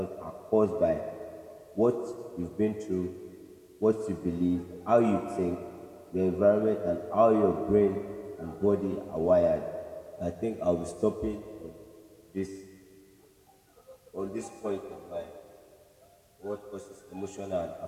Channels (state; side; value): identical; both; correlation 1.00